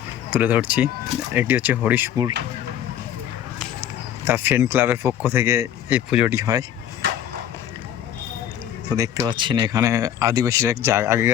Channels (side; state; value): right; quieter; 10.4 dB